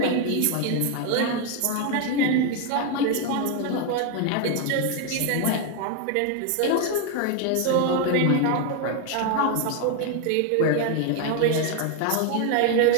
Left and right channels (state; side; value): different; both; correlation 0.01